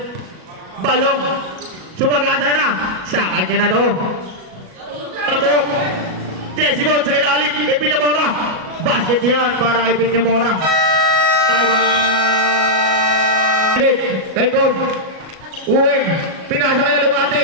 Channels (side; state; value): left; late; 37 ms